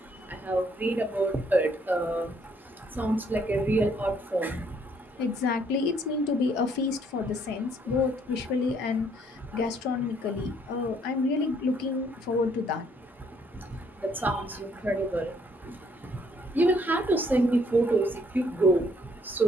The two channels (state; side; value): normal; both; correlation 0.66